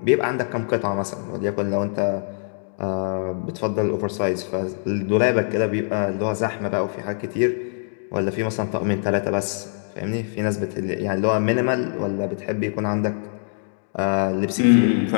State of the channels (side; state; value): right; silent; digital silence